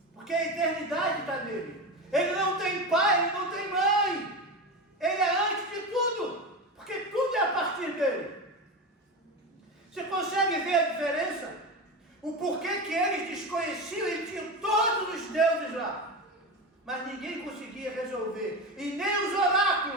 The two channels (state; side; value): normal; both; correlation 0.21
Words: porque a eternidade está nele. Ele não tem pai, ele não tem mãe, ele é antes de tudo, porque tudo é a partir dele. Você consegue ver a diferença? O porquê que eles desconheciam e tinham todos os deuses lá. Mas ninguém conseguia resolver, e nem os